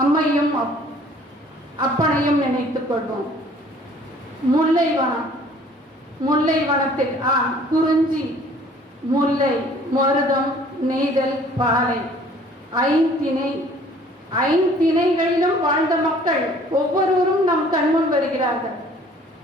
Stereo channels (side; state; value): both; normal; correlation 0.54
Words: அம்மையும் அப்பனையும் நினைத்துக் கொள்வோம். முல்லைவனம். முல்லைவனத்தில் குறிஞ்சி, முல்லை, மருதம், நெய்தல், பாலை, ஐந்திணைகளிலும் வாழ்ந்த மக்கள் ஒவ்வொருவரும் நம் கண்முன் வருகிறார்கள்.